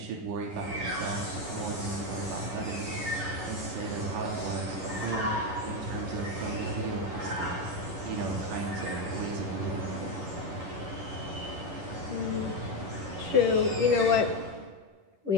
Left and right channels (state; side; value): late; left; 11 ms